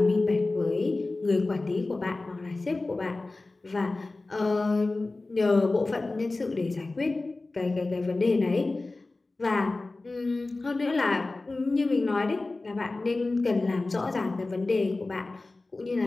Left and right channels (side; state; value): right; quieter; 3.2 dB